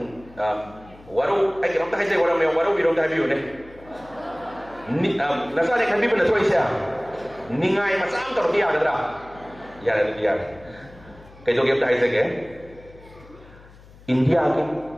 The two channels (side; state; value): left; noise; hum, 22 dB below the sound